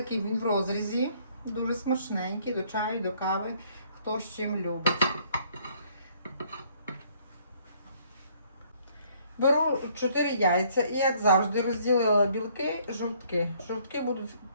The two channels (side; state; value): both; inverted; correlation -0.63